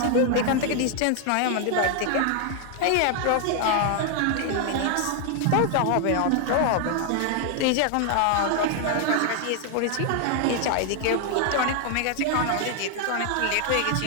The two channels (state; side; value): different; both; correlation 0.00